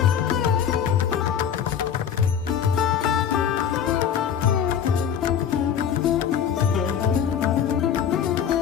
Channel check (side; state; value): right; quieter; 8.4 dB